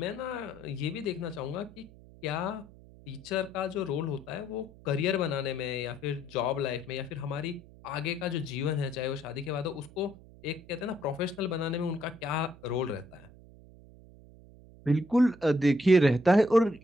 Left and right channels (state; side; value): noise; right; hum, 21 dB below the sound